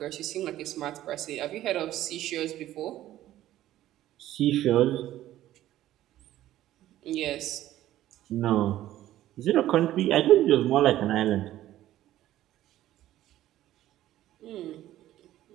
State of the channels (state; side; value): quieter; left; 13.8 dB